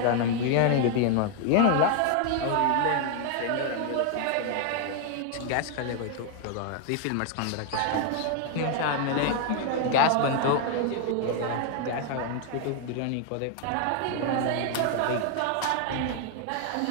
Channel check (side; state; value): both; different; correlation 0.00